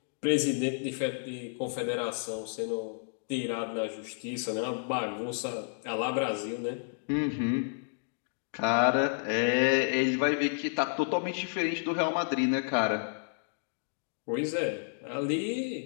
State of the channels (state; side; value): silent; right; digital silence